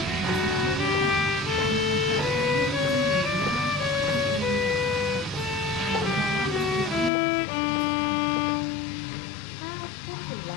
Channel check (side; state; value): right; drops out; at 7.1 s